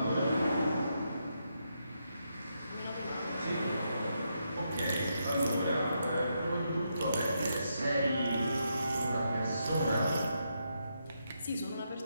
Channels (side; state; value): both; inverted; correlation -0.81